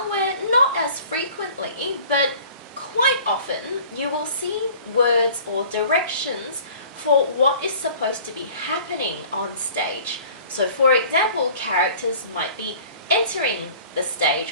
not as frequently, but quite often, you will see words or directions for what is supposed to be happening on stage. So for example, characters might be entering the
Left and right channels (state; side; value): inverted; both; correlation -0.48